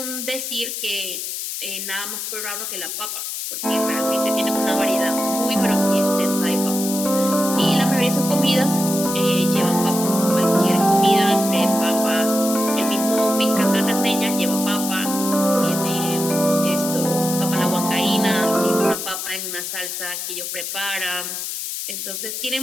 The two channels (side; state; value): left; noise; hiss, 5 dB below the sound